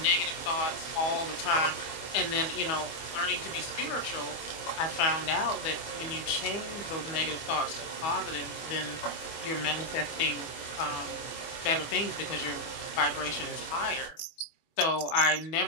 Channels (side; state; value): right; late; 24 ms